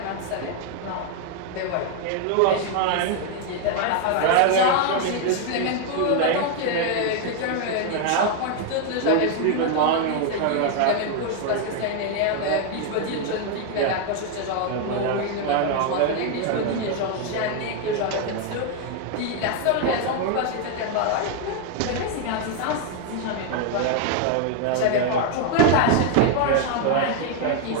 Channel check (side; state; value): both; different; correlation 0.01